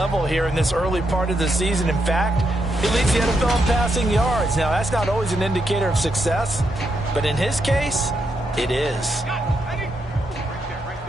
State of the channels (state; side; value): normal; both; correlation 0.81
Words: here in this early part of the season. In fact, he leads the NFL in passing yards. Now, that's not always an indicator of success, but in his case, it is.